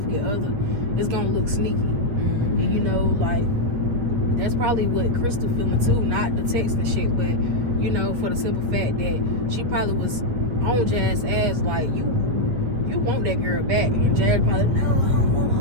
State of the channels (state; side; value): late; left; 8.3 ms